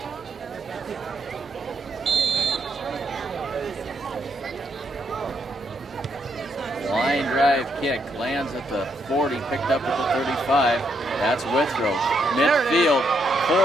Line drive kick lands at the 40, picked up at the 35. That's Withrow. Midfield,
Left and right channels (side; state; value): both; normal; correlation 0.76